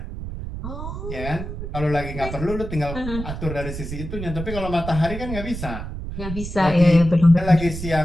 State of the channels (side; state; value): right; noise; rumble, 7 dB below the sound